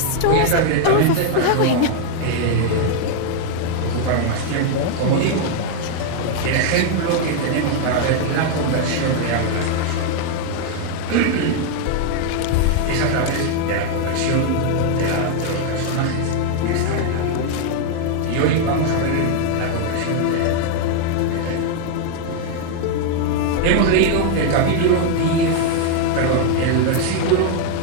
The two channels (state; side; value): different; both; correlation 0.00